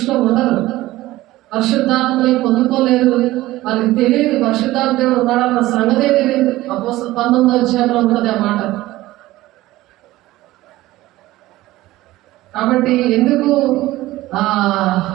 ఉండరు. పరిశుద్ధాత్మని పొందుకోలేరు, వాళ్ళకి తెలియదు పరిశుద్ధాత్మ దేవుడు ఉన్నాడన్న సంగతే తెలియదు. అపోస్తలుల 19వ అధ్యాయంలో ఉంటుంది ఆ మాట. కాబట్టి ఎందుకు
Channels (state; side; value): quieter; left; 17.1 dB